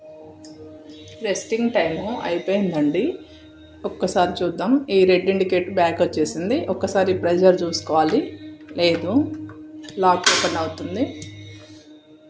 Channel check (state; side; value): identical; both; correlation 1.00